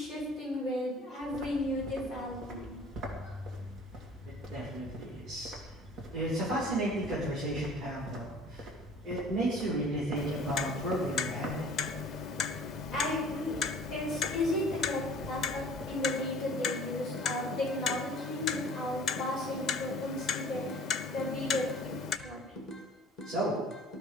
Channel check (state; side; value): normal; both; correlation 0.48